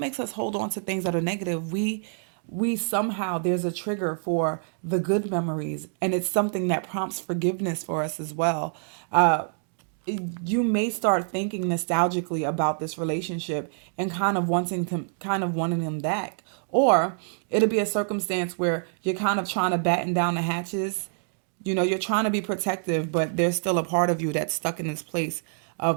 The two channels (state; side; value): silent; left; digital silence